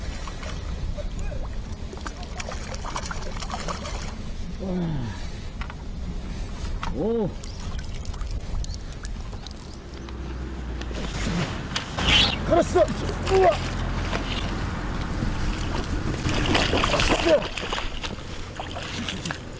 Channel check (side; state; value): both; identical; correlation 1.00